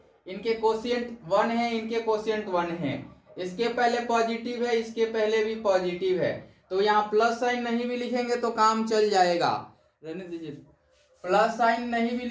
इनके कोशिएंट 1 है, इनके कोशिएंट 1 है, इसके पहले पॉजिटिव है, इसके पहले भी पॉजिटिव है, तो यहाँ प्लस साइन नहीं भी लिखेंगे तो काम चल जाएगा, रहने दीजिए, प्लस साइन नहीं भी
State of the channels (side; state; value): both; identical; correlation 1.00